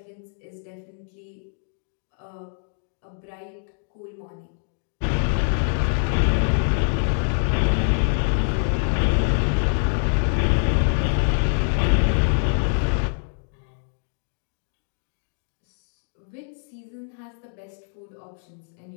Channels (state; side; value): silent; right; 62 dB below the other